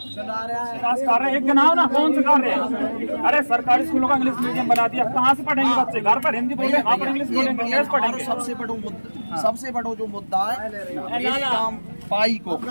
कर रहे हैं, एक गिनाओ ना कौन से कर रहे हैं? अरे सरकारी स्कूलों का इंग्लिश मीडियम बना दिया, कहाँ से पढ़ेंगे बच्चे? घर पर हिंदी बोलेंगे, वहाँ पर इंग्लिश बोलेंगे, ये कैसे पढ़ेंगे? सबसे बड़ा जो मुद्दा है इस काम पाई को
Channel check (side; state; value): both; inverted; correlation -1.00